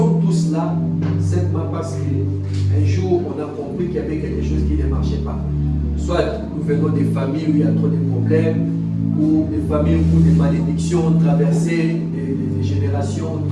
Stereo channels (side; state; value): both; identical; correlation 1.00